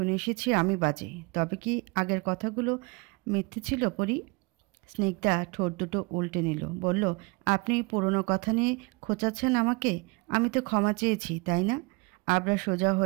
এসেছি আমি বাজে। তবে কি আগের কথাগুলো মিথ্যে ছিল পরি? স্নিগ্ধা ঠোঁট দুটো উল্টে নিল, বলল, আপনি পুরনো কথা নিয়ে খোঁচাচ্ছেন আমাকে? আমি তো ক্ষমা চেয়েছি, তাই না? আবরার সোজা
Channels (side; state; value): left; quieter; 27.8 dB